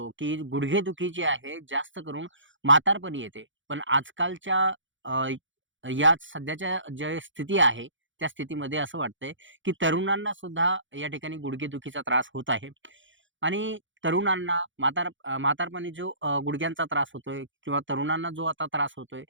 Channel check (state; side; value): late; left; 0.56 ms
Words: की गुडघेदुखी जी आहे जास्त करून म्हातारपणी येते. पण आजकालच्या अ, या सध्याच्या ज्या स्थिती आहे, त्या स्थितीमध्ये असं वाटतंय, की तरुणांना सुद्धा या ठिकाणी गुडघेदुखीचा त्रास होत आहे. आणि तरुणांना म्हातारपणी जो गुडघ्यांचा त्रास होतोय किंवा तरुणांना जो आता त्रास होतोय,